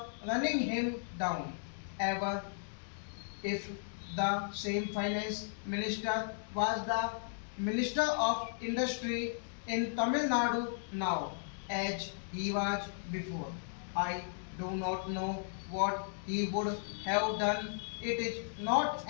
running him down. Ever if the same finance minister was the minister of industry in Tamil Nadu now as he was before. I do not know what he would have done. It is not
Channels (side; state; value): right; silent; digital silence